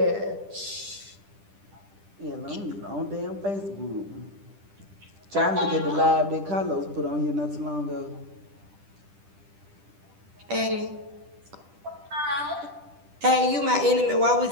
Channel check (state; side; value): late; left; 10 ms